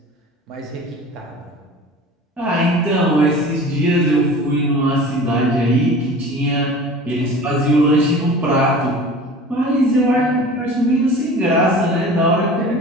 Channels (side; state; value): both; normal; correlation 0.40